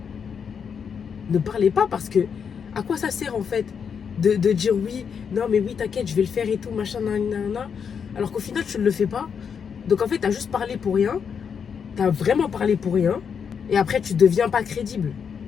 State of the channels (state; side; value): quieter; right; 6.8 dB